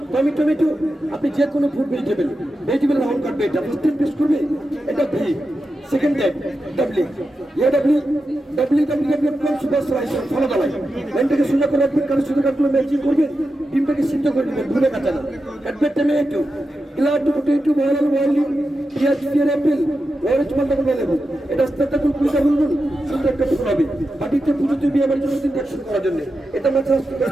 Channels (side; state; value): both; normal; correlation 0.90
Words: টমেটো, আপনি যে কোনো ফুড ভেজিটেবল রাউন্ড কাটবে, এটা ফার্স্ট টাইম পেস্ট করবে, এটা ভি। সেকেন্ড টাইম ডাবলিং, ইয়ে ডাবলিং সুপার স্লাইস ফলো দালাই, লাইনটাকে সোজা করে রাখবেন, কারণ সোজা কাটগুলো ম্যাচিং করবেন, ডিমটাকে সিদ্ধ করে দেবেন, ভুলে কাটা না। কাটবেন টমেটো, গ্লাড পটেটো, বয়েল বয়েলিং, পেঁয়াজ, পেয়ার, অ্যাপেল, অরেঞ্জ মালটা করে নেবেন, এটা আস্তে কুলকুলিটা বলবেন, সুন্দর একটা ফুল হবে। বাটিতে পুজোতে বিয়ে বাড়ির জন্য ইনজেকশন করার জন্য এটা মাত্র